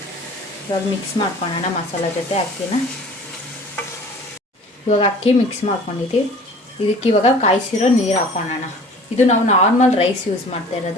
ಇವಾಗ ಮಿಕ್ಸ್ ಮಾಡ್ಕೊಳ್ಳೋಣ ಮಸಾಲ ಜೊತೆ ಅಕ್ಕಿನ. ಇವಾಗ ಅಕ್ಕಿ ಮಿಕ್ಸ್ ಮಾಡ್ಕೊಂಡಿದ್ದೀವಿ. ಇದಕ್ಕೆ ಇವಾಗ ಕಾಯಿಸಿರೋ ನೀರು ಹಾಕೊಳ್ಳೋಣ. ಇದು ನಾವು ನಾರ್ಮಲ್ ರೈಸ್ ಯೂಸ್ ಮಾಡ್ತಾ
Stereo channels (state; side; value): normal; both; correlation 0.46